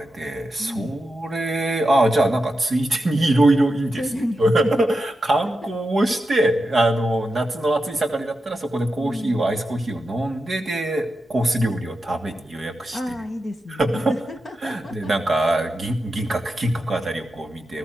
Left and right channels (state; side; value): normal; both; correlation 0.89